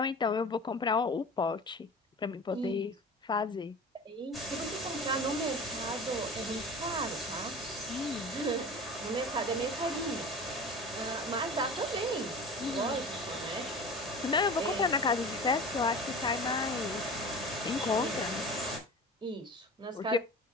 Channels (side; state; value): both; normal; correlation 0.36